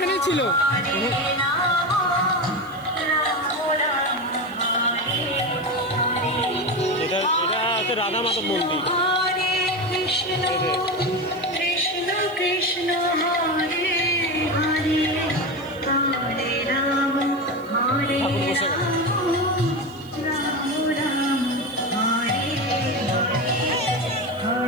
ছিল। এটা এটা হচ্ছে রাধা মাধব মন্দির। ঠাকুর বসে গেল।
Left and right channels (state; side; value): noise; right; hiss, 26 dB below the sound